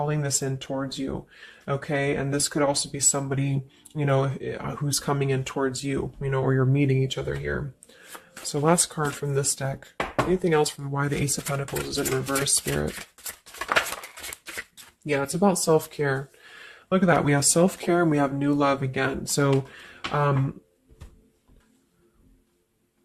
this in towards you. Okay, and this could also be somebody, you know, who's coming in towards you, you know, or you're meeting each other here. So last card from this deck. Anything else from why the Ace of Pentacles is in reverse, Spirit? Yeah, it's about self-care. Look at that. We have self-care and we have new love again. So,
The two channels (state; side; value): identical; both; correlation 1.00